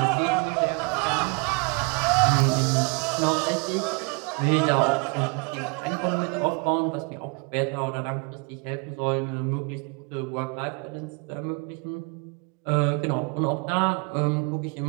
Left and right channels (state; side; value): quieter; left; 31.0 dB